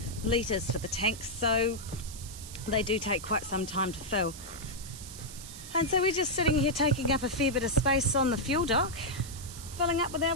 litres for the tanks, so they do take quite some time to fill. And so we're just sitting here taking up a fair bit of space on the fuel dock, filling up with our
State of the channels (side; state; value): right; noise; hiss, 13 dB below the sound